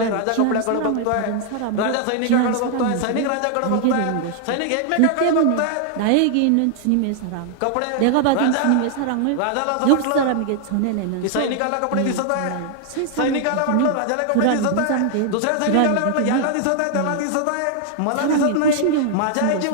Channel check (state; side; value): different; both; correlation 0.00